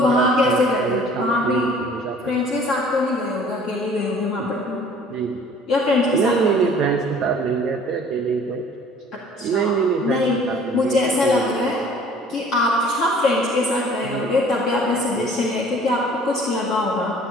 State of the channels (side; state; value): both; normal; correlation 0.52